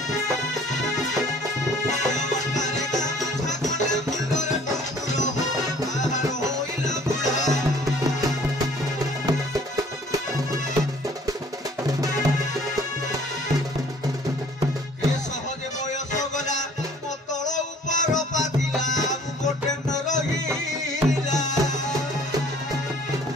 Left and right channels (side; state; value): both; normal; correlation 0.54